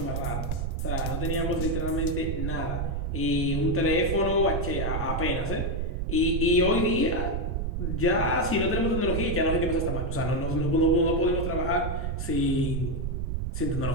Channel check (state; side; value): noise; right; rumble, 1 dB below the sound